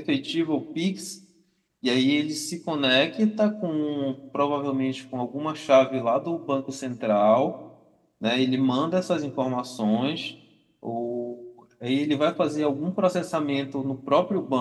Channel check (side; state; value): both; identical; correlation 1.00